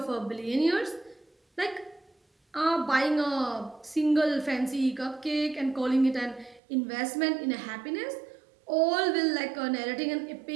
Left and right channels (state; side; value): drops out; left; at 6.6 s